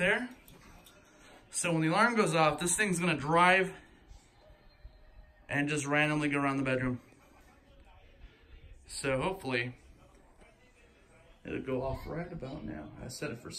So when the alarm goes off, this thing's gonna drive and just randomly go around the bedroom. So hopefully, it'll go off right about now. I set it for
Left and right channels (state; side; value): identical; both; correlation 1.00